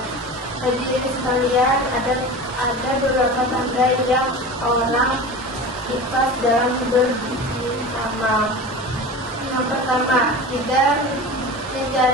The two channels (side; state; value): both; normal; correlation 0.32